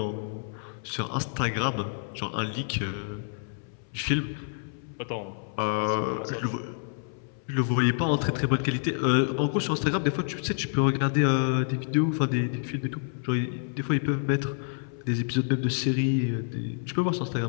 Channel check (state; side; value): silent; right; 59 dB below the other